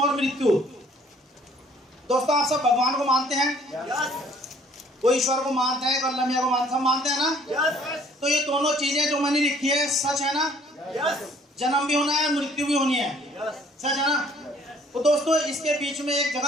मृत्यु। दोस्तों आप सब भगवान को मानते हैं? कोई ईश्वर को मानते हैं, कोई अल्लाह मियां को मानते हैं, सब मानते हैं ना? तो ये दोनों चीजें जो मैंने लिखी है सच है ना? जन्म भी होना है, मृत्यु भी होनी है, सच है ना? तो दोस्तों इसके बीच में एक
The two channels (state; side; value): normal; both; correlation 0.58